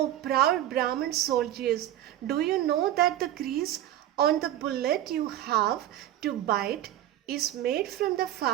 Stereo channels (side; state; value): left; quieter; 12.7 dB